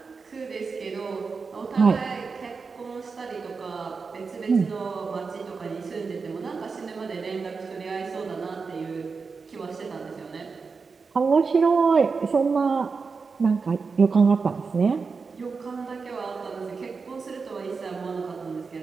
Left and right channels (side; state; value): left; quieter; 4.8 dB